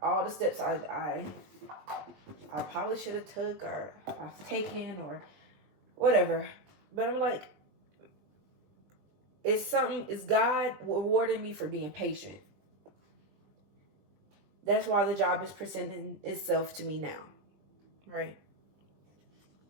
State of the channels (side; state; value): left; late; 20 ms